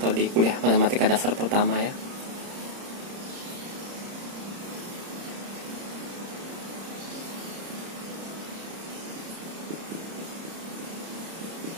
di kuliah matematika dasar pertama ya.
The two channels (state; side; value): late; left; 30 ms